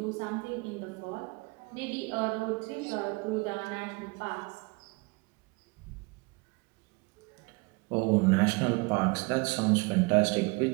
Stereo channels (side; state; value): left; quieter; 27.7 dB